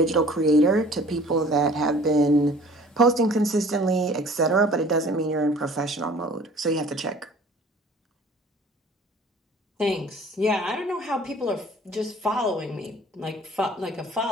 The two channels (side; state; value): both; normal; correlation 0.49